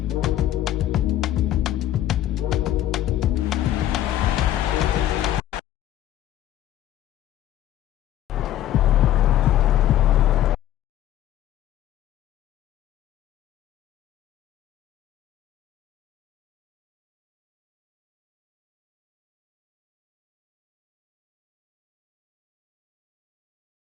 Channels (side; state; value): right; quieter; 12.5 dB